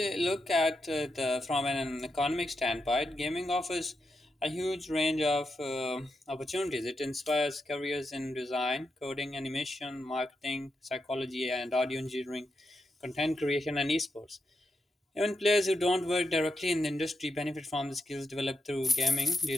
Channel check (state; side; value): normal; both; correlation 0.85